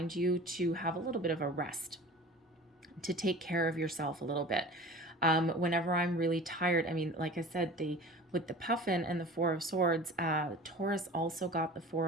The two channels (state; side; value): normal; both; correlation 0.40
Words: you to have a little bit of a rest, to take care of yourself a little bit. Whenever I'm really tired, I mean, like I said, with the puffin and the Four of Swords, Taurus also got the